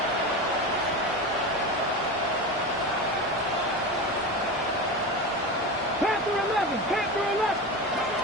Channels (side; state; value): both; normal; correlation 0.24